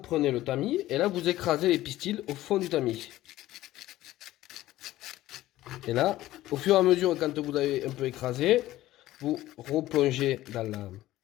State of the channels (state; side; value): quieter; right; 15.6 dB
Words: le tamis et là, vous écrasez les pistils au fond du tamis. Et là, au fur et à mesure, quand vous avez un peu écrasé, vous replongez dans